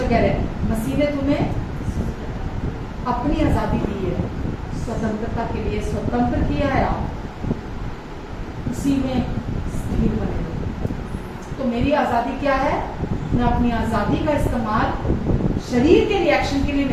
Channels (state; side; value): identical; both; correlation 1.00